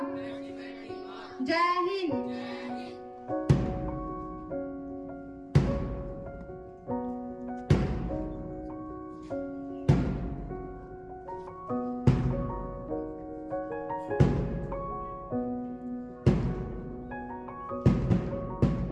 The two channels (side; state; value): both; identical; correlation 1.00